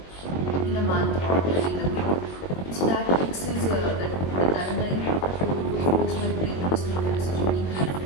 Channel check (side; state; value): right; late; 21 ms